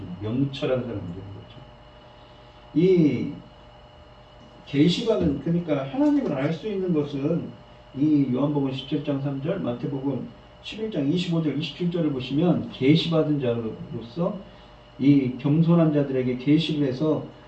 명철한 사람들인 거죠. 이 계시받은 그러니까 하나님을 알 수 있는 것은 이 요한복음 17장 3절, 마태복음 11장 25절, 27절을 보시면 계시받은 자로서 이 겸손한 자들에게 계시를 해서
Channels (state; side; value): identical; both; correlation 1.00